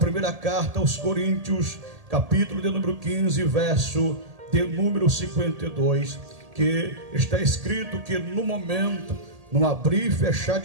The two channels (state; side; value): late; left; 1.7 ms